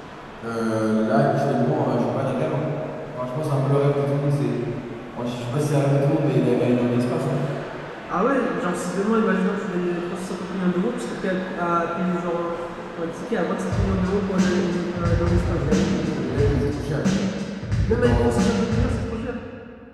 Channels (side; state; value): both; identical; correlation 1.00